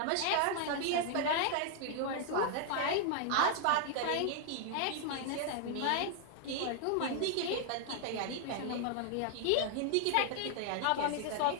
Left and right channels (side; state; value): both; different; correlation 0.00